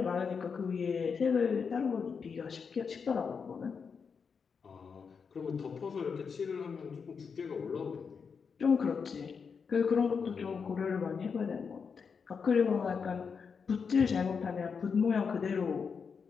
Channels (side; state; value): right; quieter; 5.9 dB